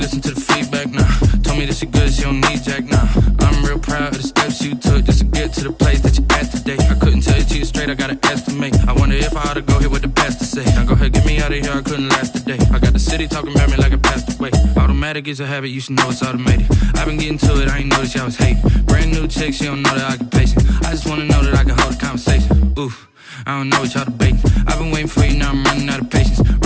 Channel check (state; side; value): identical; both; correlation 1.00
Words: to the feedback, nah. Told me that she good, she don't need jack, nah. I'm real proud of the steps you took just to get to the place that you're at today. I couldn't tell you to you straight, I gotta estimate. I wonder if I ought to go here with the pastor say. Now go ahead, get me out of here, I couldn't last a day. I got the city talking about me like I passed away. Automatic is a habit, you should know it's automated. I've been getting to it, I ain't noticed y'all was hating. Brand new chick, she don't know that I can pace it. I just wanna know that I can hold a conversation. Oof, I don't know what y'all debating. I've been waiting for you, now I'm running out of patience.